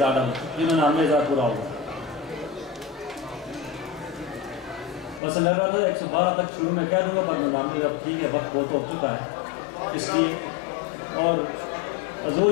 ڈالر، جنہوں نے 90,000 پورا ہوگا. بس میں رہا تھا 112 تک شروع میں کہہ دوں گا، پر 99 اب ٹھیک ہے، وقت بہت ہو چکا ہے اس لیے. اور حضور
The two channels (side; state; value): right; drops out; at 5.2 s